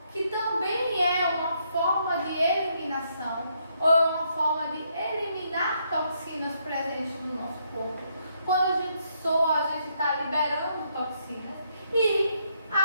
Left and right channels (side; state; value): both; inverted; correlation -0.74